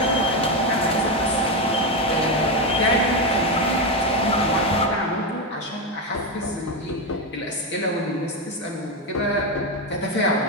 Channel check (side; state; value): both; normal; correlation 0.10